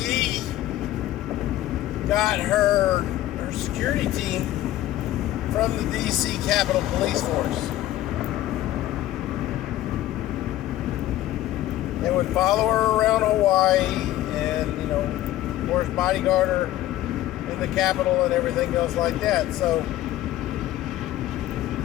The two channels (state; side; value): quieter; right; 14.4 dB